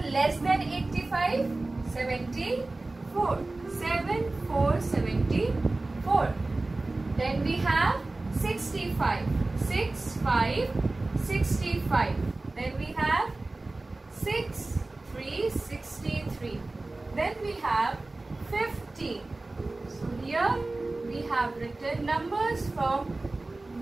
less than 85? 74. 74. Then we have 65. 65. Then we have 63. Then we have 50. So here we have written numbers from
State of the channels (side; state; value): left; quieter; 3.1 dB